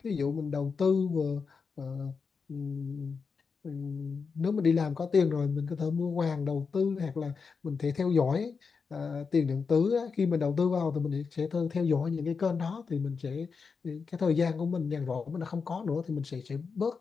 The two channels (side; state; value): right; quieter; 5.2 dB